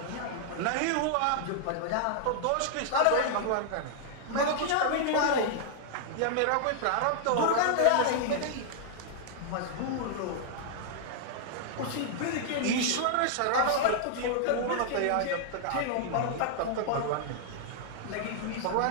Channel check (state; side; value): different; both; correlation -0.01